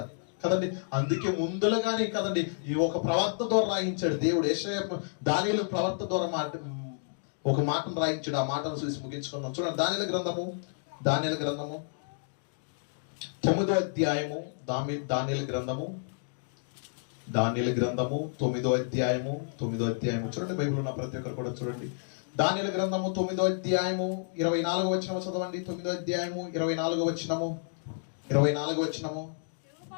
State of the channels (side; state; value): right; silent; digital silence